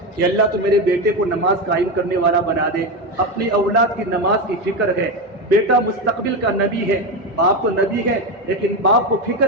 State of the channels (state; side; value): normal; both; correlation 0.14